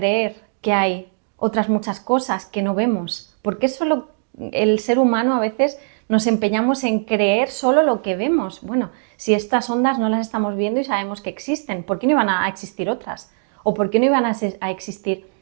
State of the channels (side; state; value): left; silent; digital silence